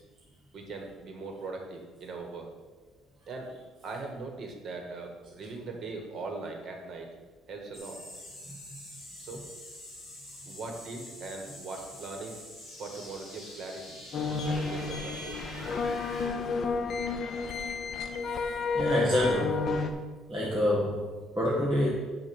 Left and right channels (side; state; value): both; normal; correlation 0.71